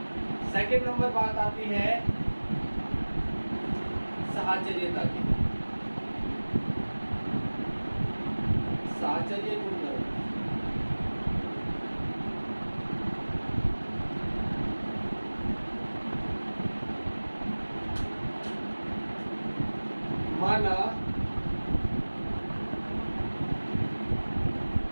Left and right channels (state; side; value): inverted; both; correlation -1.00